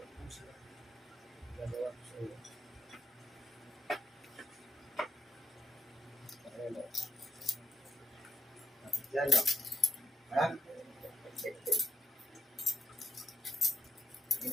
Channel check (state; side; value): normal; both; correlation 0.81